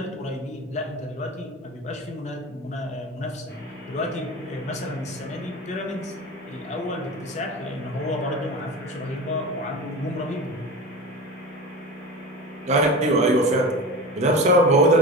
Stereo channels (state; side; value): normal; both; correlation 0.29